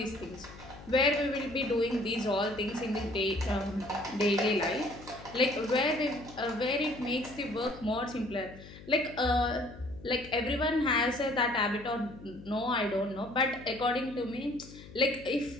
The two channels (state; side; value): noise; left; hum, 17 dB below the sound